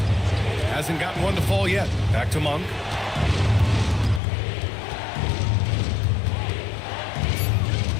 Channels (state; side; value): drops out; right; at 4.2 s